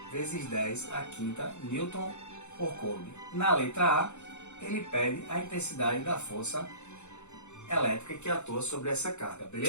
vezes 10 a quinta Newton por Coulomb. Na letra A, ele pede a intensidade da força elétrica que atua sobre essa carga,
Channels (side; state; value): right; late; 0.83 ms